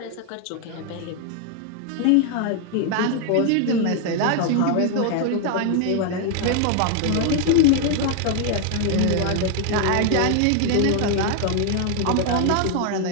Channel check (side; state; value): both; different; correlation 0.00